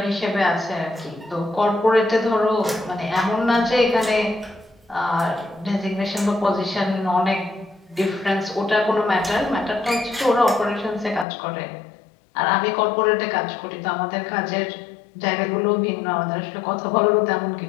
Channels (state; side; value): drops out; right; at 11.2 s